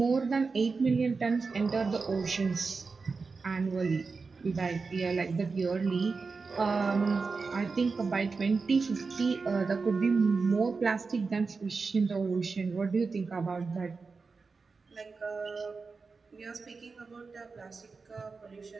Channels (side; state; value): left; quieter; 4.5 dB